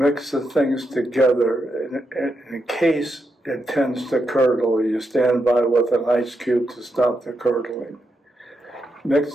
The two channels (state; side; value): normal; both; correlation 0.84